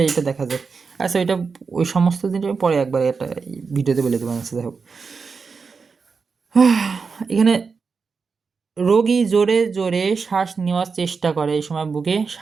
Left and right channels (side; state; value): left; quieter; 5.1 dB